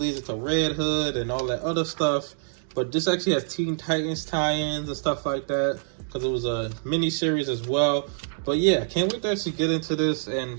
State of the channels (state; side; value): silent; left; digital silence